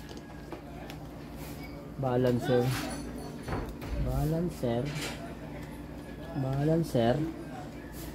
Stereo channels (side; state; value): both; identical; correlation 1.00